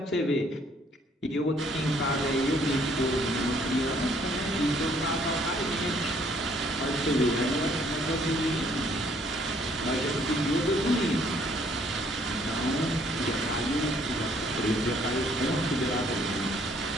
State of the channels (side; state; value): both; normal; correlation 0.64